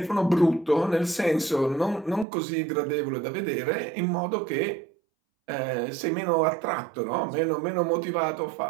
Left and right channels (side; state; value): left; drops out; at 2.2 s